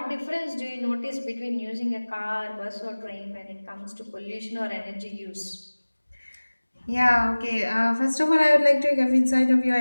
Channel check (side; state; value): both; inverted; correlation -1.00